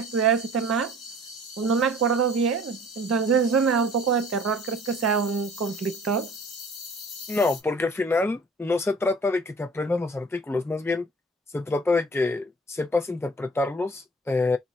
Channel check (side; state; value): both; normal; correlation 0.49